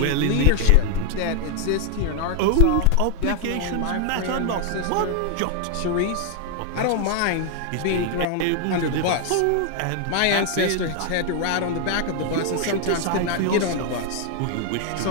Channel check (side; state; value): both; different; correlation 0.00